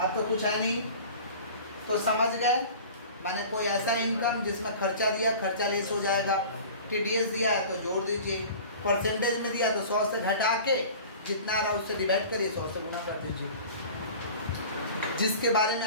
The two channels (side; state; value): both; inverted; correlation -0.41